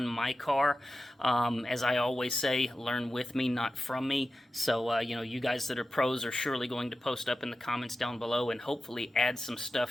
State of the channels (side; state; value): both; normal; correlation 0.93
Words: my car. As I always say, learn with me, not from me. So, you guys that are pros are surely going to post up in the comments down below and hopefully add some